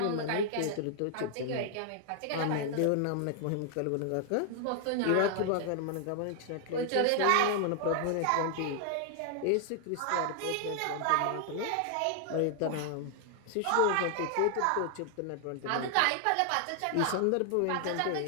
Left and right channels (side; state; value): both; different; correlation 0.00